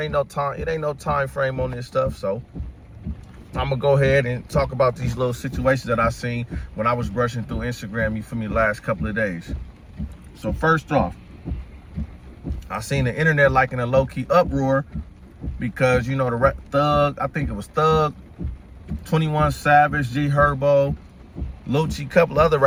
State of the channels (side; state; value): both; identical; correlation 1.00